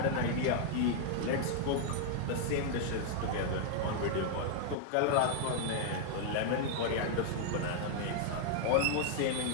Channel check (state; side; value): different; both; correlation 0.00